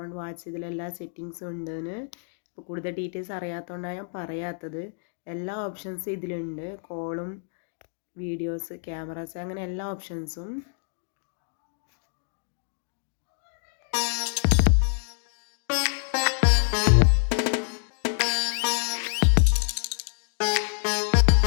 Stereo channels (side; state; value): right; silent; digital silence